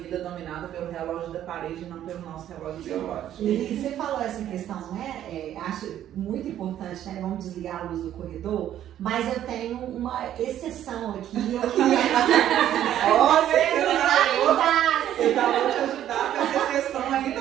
dominada pelo relógio da parede e não pelo nosso relógio biológico. E você falou essa questão, né? Acho muito importante, né? Vamos desligar a luz do corredor, mas eu tenho uma exceção aqui. Eu queria eu vou te ajudar com essa exceção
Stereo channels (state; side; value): quieter; left; 11.4 dB